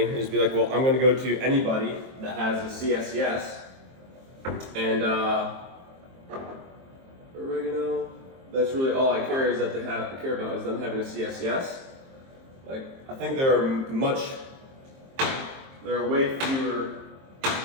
and just be like, well, I'm going to go to anybody that has a CSCS, and oregano, that's really all I care about is them having a CSCS. Like, I think there are way fewer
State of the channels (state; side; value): late; left; 23 ms